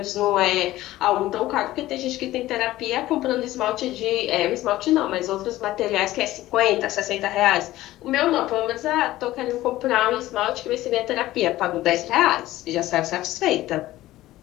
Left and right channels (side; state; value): right; quieter; 15.9 dB